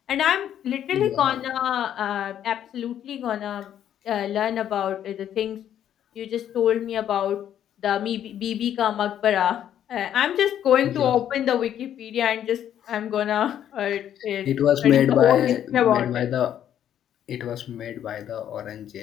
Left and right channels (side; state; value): right; quieter; 10.3 dB